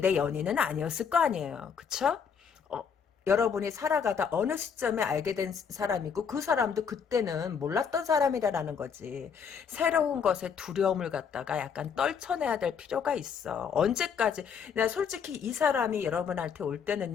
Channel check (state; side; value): quieter; right; 6.8 dB